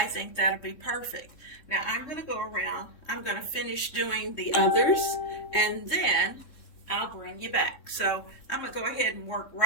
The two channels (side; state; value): right; late; 3.6 ms